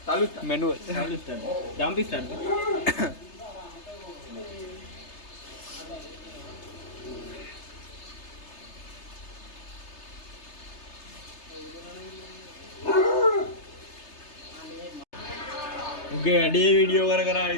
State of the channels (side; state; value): right; late; 3.3 ms